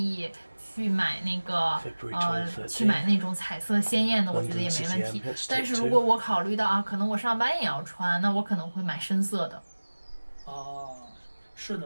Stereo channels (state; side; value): inverted; both; correlation -1.00